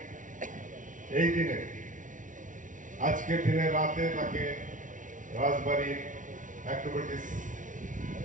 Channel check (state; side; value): late; left; 0.37 ms